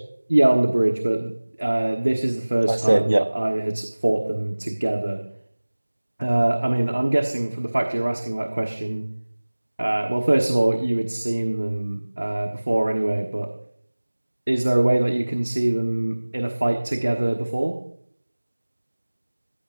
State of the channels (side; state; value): both; inverted; correlation -1.00